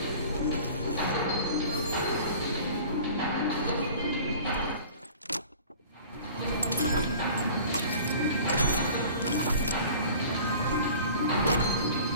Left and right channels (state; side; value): inverted; both; correlation -0.43